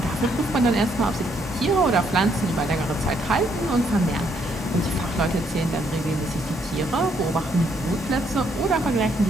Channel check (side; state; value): both; normal; correlation 0.71